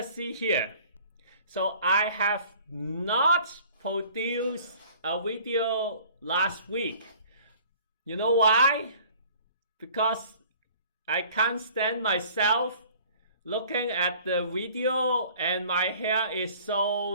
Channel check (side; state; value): both; inverted; correlation -0.51